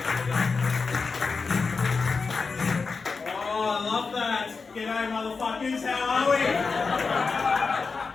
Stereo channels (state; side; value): quieter; right; 4.7 dB